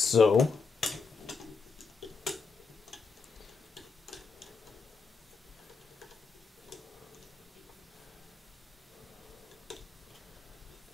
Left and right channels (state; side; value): quieter; right; 4.8 dB